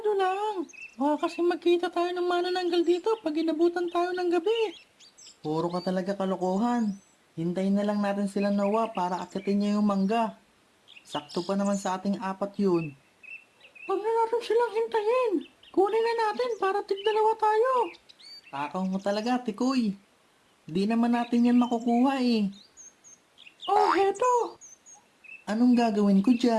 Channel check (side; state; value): both; identical; correlation 1.00